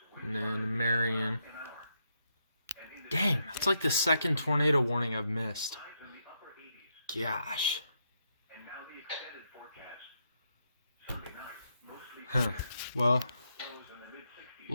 and then Marion. Dang, that's like the second tornado warning I've missed. Gosh. Huh. Well,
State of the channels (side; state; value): both; inverted; correlation -0.80